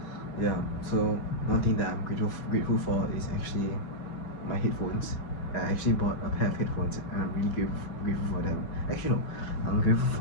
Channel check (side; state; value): right; late; 6.1 ms